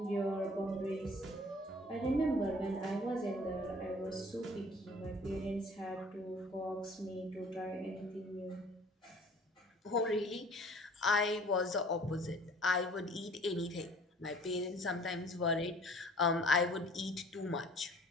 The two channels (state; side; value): normal; both; correlation 0.51